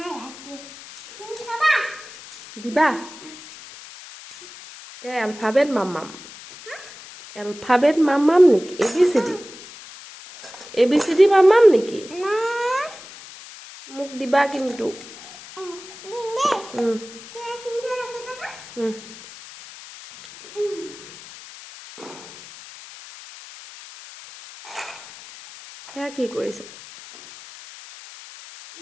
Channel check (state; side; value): noise; left; hiss, 17 dB below the sound